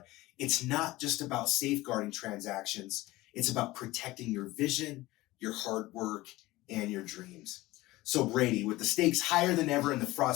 it's not just about safeguarding transactions, it's about protecting your vision, your hard work, and your dreams. So Brady, with the stakes higher than ever and the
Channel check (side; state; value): right; quieter; 18.8 dB